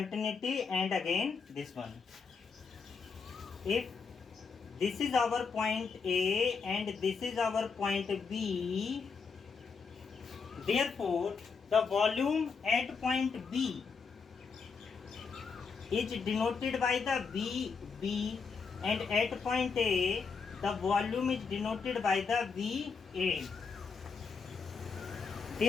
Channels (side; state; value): right; quieter; 5.2 dB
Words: and again this one. If this is our point A and this is our point B, therefore the volume at point B is denoted by the VB, and at point A the volume is denoted by the VA.